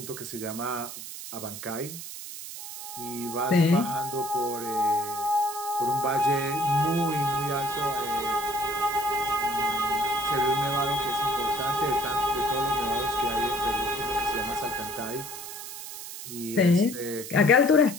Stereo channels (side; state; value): right; noise; hiss, 10 dB below the sound